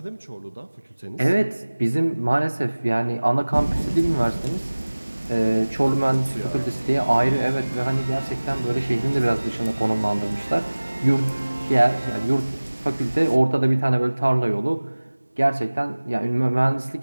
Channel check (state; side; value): inverted; both; correlation -1.00